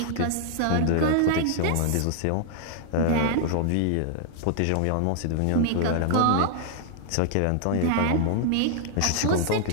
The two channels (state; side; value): different; both; correlation 0.00